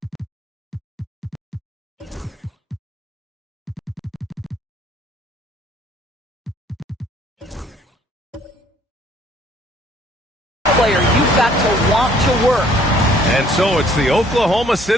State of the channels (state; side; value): normal; both; correlation 0.60